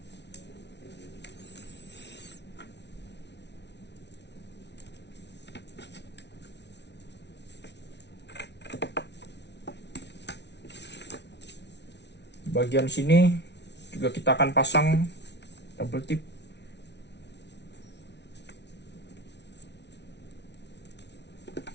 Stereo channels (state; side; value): late; right; 0.50 ms